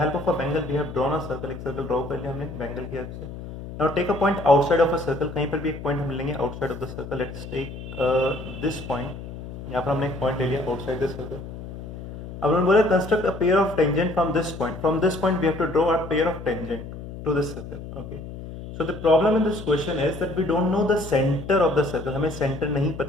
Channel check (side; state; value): left; noise; hum, 11 dB below the sound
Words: of a bangle, we have drawn a circle. एक circle draw कर लिया हमने bangle की help से. Now take a point outside of a circle. कहीं पर भी एक point हम लेंगे outside of the circle. Let's take this point. यहाँ पर हमने एक point ले लिया outside the circle. अब हमने बोला construct a pair of tangent from this point. From this point, we have to draw a pair of tangent to this circle. Okay. So the problem in this question is that we don't know the center of the circle. हमें center नहीं